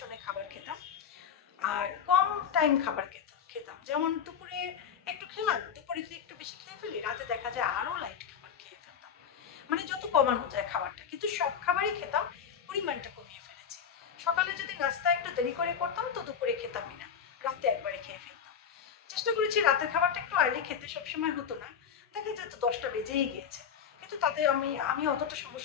খাবার খেতাম, আর কম টাইম খাবার খেতাম। যেমন দুপুরে একটু খেলাম, দুপুরে যদি একটু বেশি খেয়ে ফেলি, রাতে দেখা যায় আরও লাইট খাবার খেয়ে ফেলতাম, মানে যত কমানো যায় খাবারটা। কিন্তু সব খাবারই খেতাম, পরিমাণটা কমিয়ে ফেলেছি। সকালে যদি নাস্তা একটু দেরি করে করতাম তো দুপুরে খেতামই না, রাতে একবারে খেয়ে ফেলতাম। চেষ্টা করেছি রাতের খাবারটা একটু আর্লি খেতে, সবসময় হতো না, দেখা যেত 10টা বেজেই গিয়েছে, কিন্তু তাতে আমি অতটা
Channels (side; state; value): right; quieter; 7.7 dB